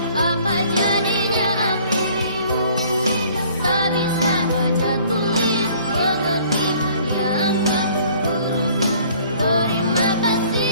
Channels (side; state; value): both; inverted; correlation -0.55